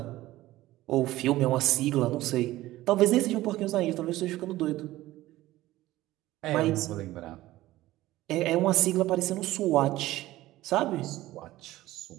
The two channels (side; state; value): left; quieter; 16.5 dB